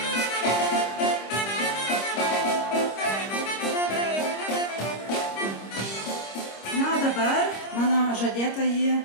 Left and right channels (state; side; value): late; right; 25 ms